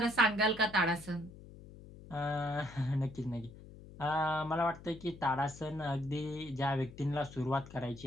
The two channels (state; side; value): noise; left; hum, 17 dB below the sound